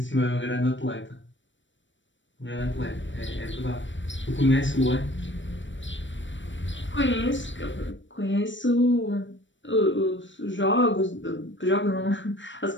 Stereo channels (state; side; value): late; right; 0.54 ms